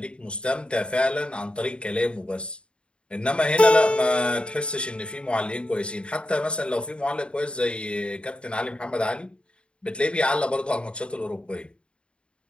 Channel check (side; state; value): right; late; 0.055 ms